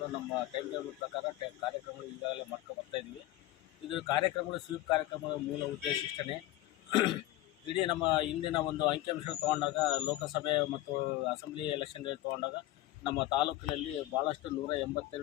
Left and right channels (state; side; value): quieter; right; 15.5 dB